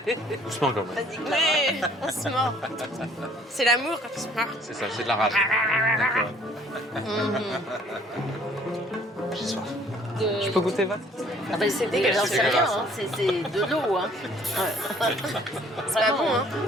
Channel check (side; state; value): both; normal; correlation 0.58